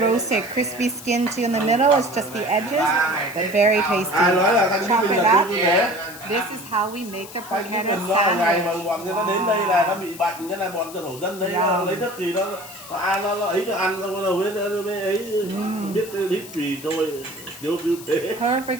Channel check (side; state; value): left; noise; hiss, 16 dB below the sound